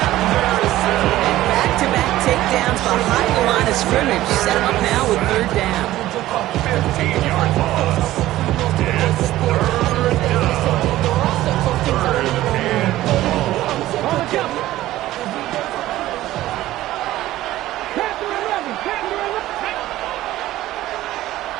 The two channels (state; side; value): quieter; left; 15.3 dB